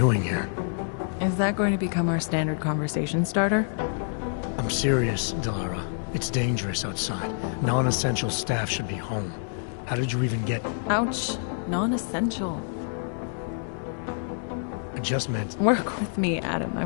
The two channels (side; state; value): right; silent; digital silence